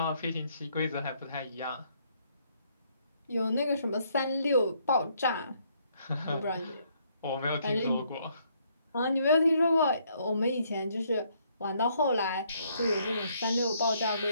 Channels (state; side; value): inverted; both; correlation -0.69